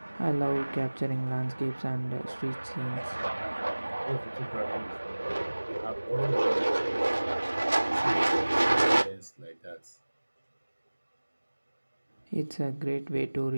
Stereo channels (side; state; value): both; inverted; correlation -1.00